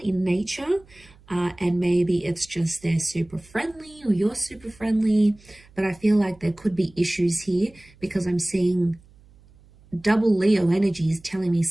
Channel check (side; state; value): right; noise; hum, 27 dB below the sound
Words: nature. And maybe it's just they're super friendly or you're super friendly, but I feel like there could be issues here because I'm seeing double Leo energies telling me